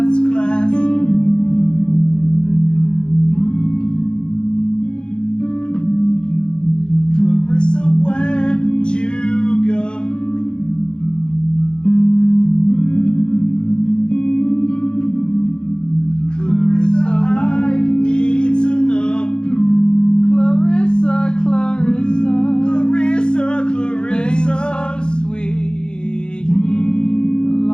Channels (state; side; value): late; right; 0.050 ms